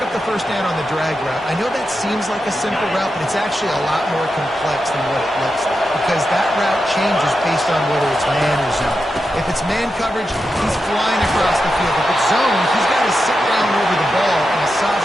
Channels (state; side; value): normal; both; correlation 0.89